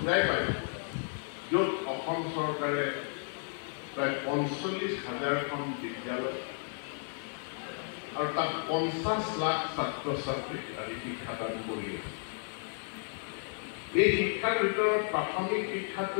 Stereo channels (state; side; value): silent; right; 56 dB below the other